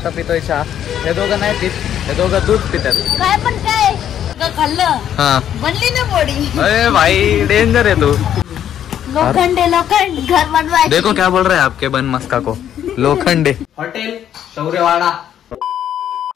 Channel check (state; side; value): quieter; right; 10.1 dB